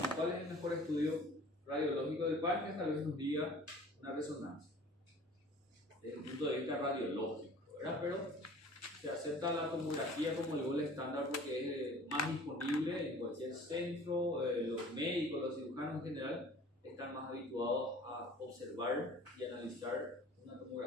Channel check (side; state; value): both; normal; correlation 0.47